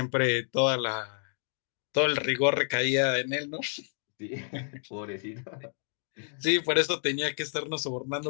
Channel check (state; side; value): silent; right; 57 dB below the other